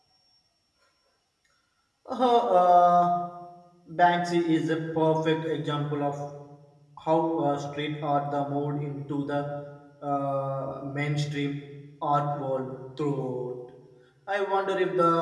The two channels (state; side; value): identical; both; correlation 1.00